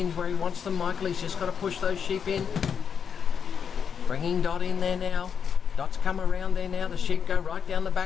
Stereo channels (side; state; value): right; quieter; 7.1 dB